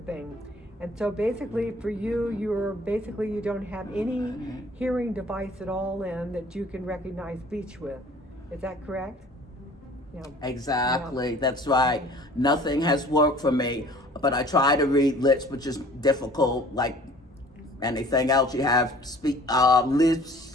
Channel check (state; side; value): normal; both; correlation 0.50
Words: thing. And so basically for you, you don't have any hearing device at all in that you can recognize speech with. Is that correct? Yeah. Exactly, Yeah. that's right. Nothing has worked for me, but I try to read lips, which is difficult, like anything else. You have